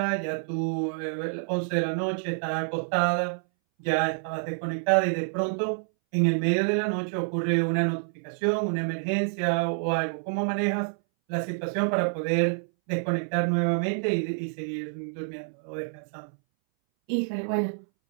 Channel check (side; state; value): left; silent; 60 dB below the other